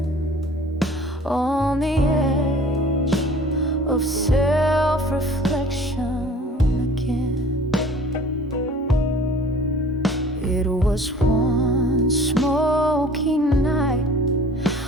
on the edge of self-reflection again. It was one smoky night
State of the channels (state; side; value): normal; both; correlation 0.47